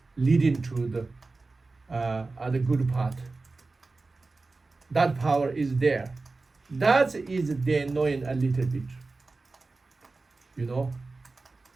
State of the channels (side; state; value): left; quieter; 3.6 dB